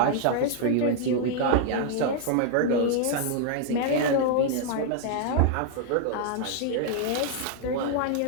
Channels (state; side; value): different; both; correlation 0.00